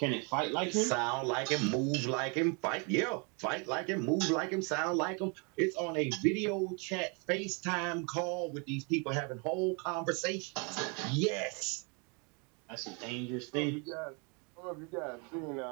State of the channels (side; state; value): left; quieter; 33.7 dB